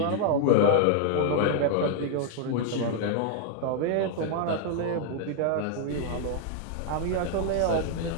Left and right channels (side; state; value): both; different; correlation 0.00